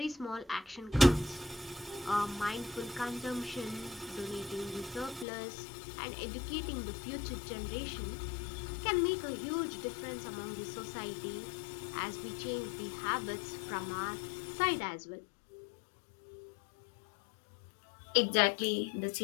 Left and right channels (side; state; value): right; drops out; at 5.2 s